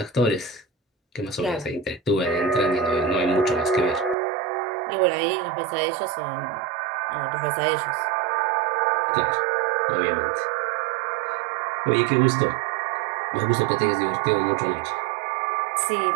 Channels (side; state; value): left; drops out; at 4.2 s